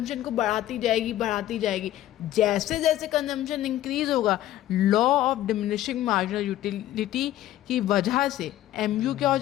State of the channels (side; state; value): right; quieter; 13.6 dB